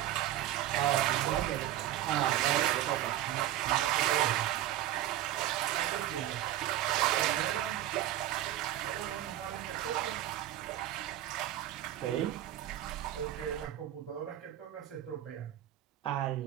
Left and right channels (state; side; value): quieter; left; 13.1 dB